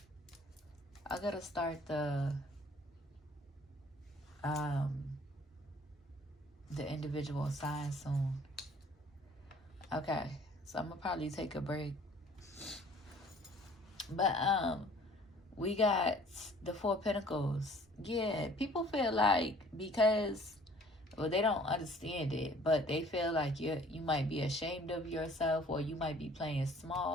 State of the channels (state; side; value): normal; both; correlation 0.54